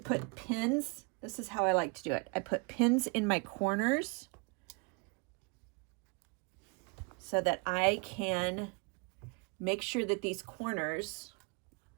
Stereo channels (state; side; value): quieter; left; 31.6 dB